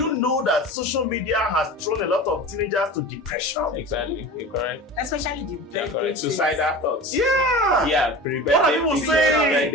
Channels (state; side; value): normal; both; correlation 0.34